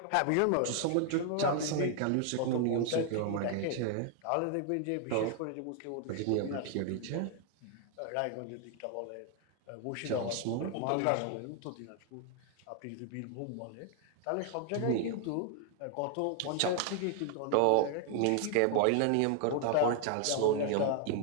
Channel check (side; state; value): both; different; correlation 0.00